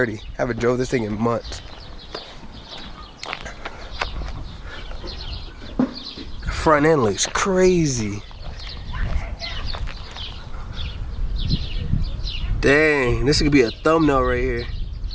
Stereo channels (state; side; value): identical; both; correlation 1.00